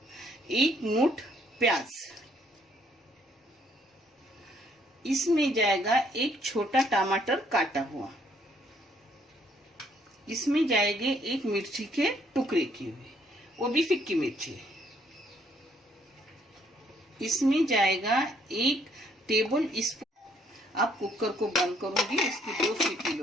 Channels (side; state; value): both; normal; correlation 0.66